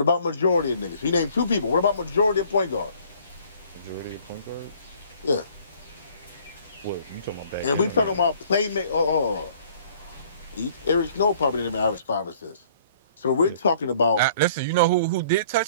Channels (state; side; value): inverted; both; correlation -0.56